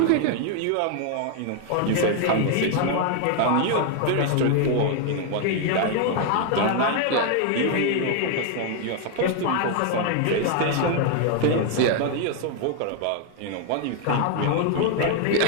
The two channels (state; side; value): different; both; correlation 0.00